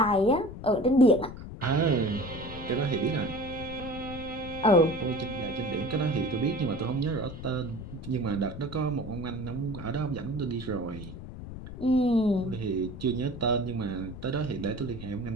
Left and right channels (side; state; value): left; noise; rumble, 11 dB below the sound